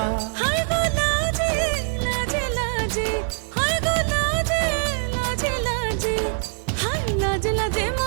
হায় গো লাজে লাজে লাজে, হায় গো লাজে লাজে লাজে, হায় লাজে লাজে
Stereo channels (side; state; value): left; silent; 63 dB below the other